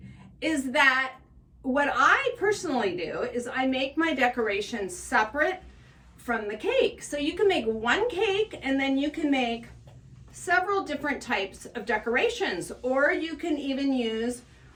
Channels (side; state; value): both; identical; correlation 1.00